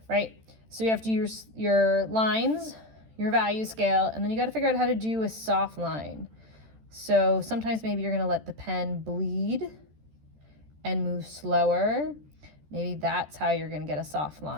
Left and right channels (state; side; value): late; left; 13 ms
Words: right? So you have to use your lines, your value scale, and then you got to figure out how to do a soft line. So sometimes maybe you're going to let the pen bleed and move slower. Maybe that's how you're going to get a soft